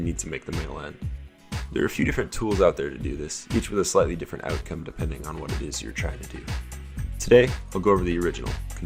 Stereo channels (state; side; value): identical; both; correlation 1.00